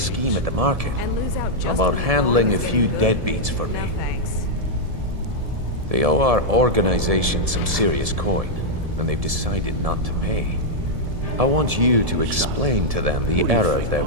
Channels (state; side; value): late; left; 1.7 ms